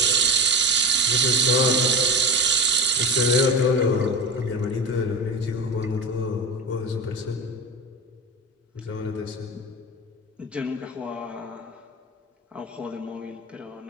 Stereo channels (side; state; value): both; normal; correlation 0.26